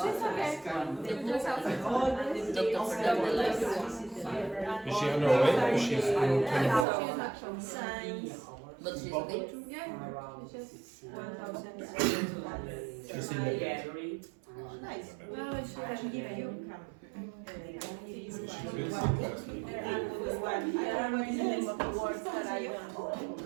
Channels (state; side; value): drops out; left; at 6.9 s